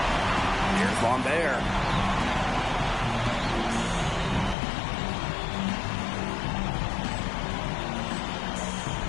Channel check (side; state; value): right; drops out; at 4.5 s